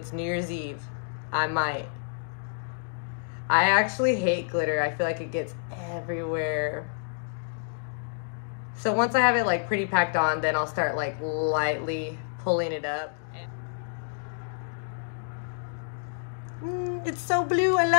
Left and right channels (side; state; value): right; silent; digital silence